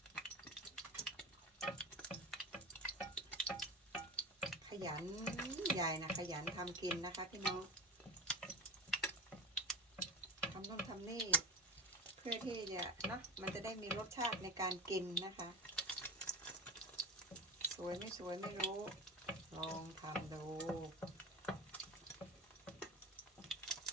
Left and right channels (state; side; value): normal; both; correlation 0.26